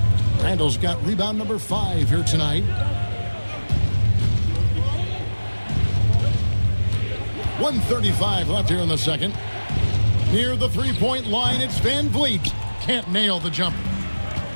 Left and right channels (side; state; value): both; inverted; correlation -1.00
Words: Randle's got rebound number 5 here tonight. 1:35 left here in the second. Near the three-point line, it's Van Vliet. Can't nail the jumper.